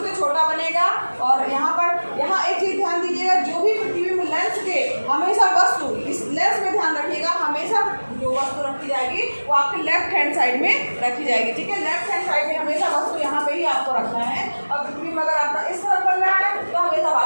से छोटा बनेगा। और यहाँ एक चीज ध्यान दीजिएगा, जो भी प्रतिबिंब लेंस के हमेशा वस्तु इस लेंस में ध्यान रखिएगा, हमेशा जो वस्तु रखी जाएगी वो आपके लेफ्ट हैंड साइड में रखी जाएगी, ठीक है। लेफ्ट हैंड साइड में हमेशा वस्तु यहाँ पे ही आपको रखना है। और प्रतिबिंब अगर आपका इस तरफ बन रहा है तो हमेशा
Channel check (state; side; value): inverted; both; correlation -1.00